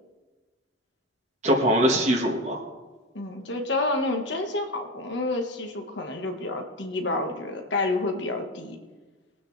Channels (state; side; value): normal; both; correlation 0.21